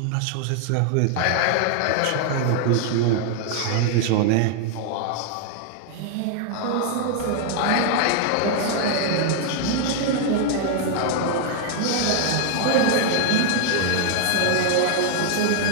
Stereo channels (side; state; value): both; different; correlation 0.00